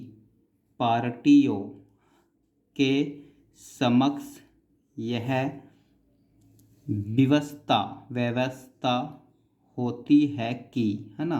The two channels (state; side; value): identical; both; correlation 1.00